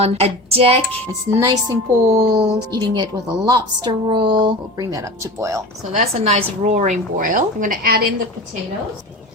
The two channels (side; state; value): both; normal; correlation 0.33